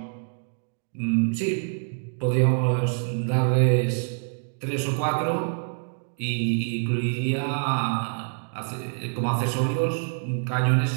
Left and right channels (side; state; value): left; silent; 56 dB below the other